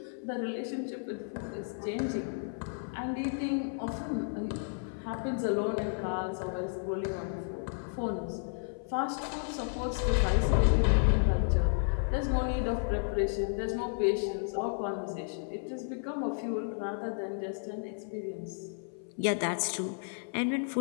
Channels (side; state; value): right; silent; 56 dB below the other